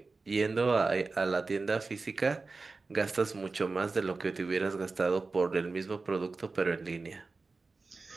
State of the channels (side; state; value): left; quieter; 3.9 dB